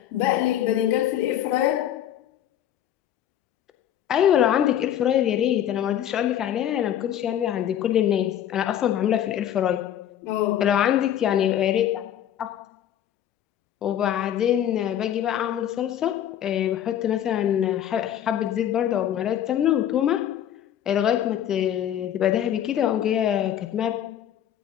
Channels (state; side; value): quieter; right; 10.7 dB